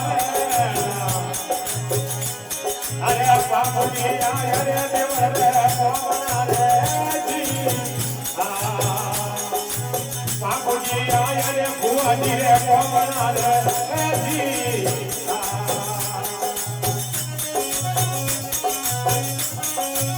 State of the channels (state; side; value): identical; both; correlation 1.00